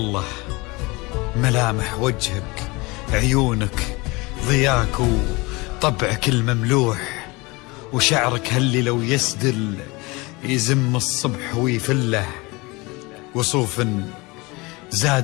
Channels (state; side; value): quieter; right; 24.6 dB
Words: ملامح وجهك عيونك ضياك وطبعك المملوح، وشعرك هاللي لو يسدل يزم الصبح ويفله، وصوف